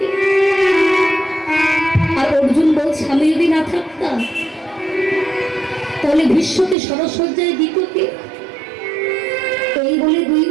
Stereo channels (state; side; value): drops out; left; at 6.8 s